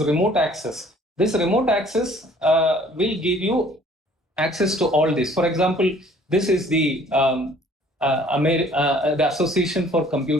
remote access. This remote access will give you access to all this. For example, this is the Association for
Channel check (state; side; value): normal; both; correlation 0.55